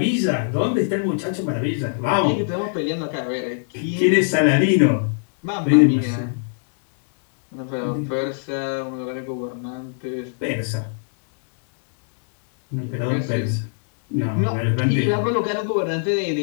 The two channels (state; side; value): silent; right; digital silence